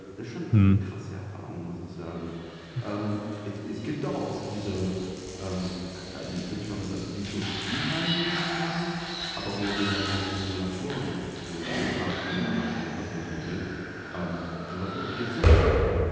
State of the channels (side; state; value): both; identical; correlation 1.00